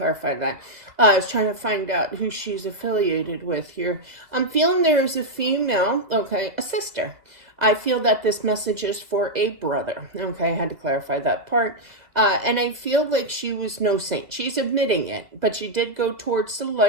that. I was trying to find out who she's affiliated with here. I'm feeling there is a female, okay, a sister. I feel that this message is for a brother. Okay, I had to clarify that part. And I feel like she was no saint. She's admitting it, but she did go towards the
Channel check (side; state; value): left; late; 2.0 ms